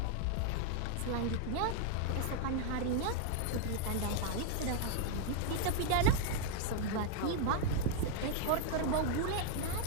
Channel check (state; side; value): different; both; correlation 0.00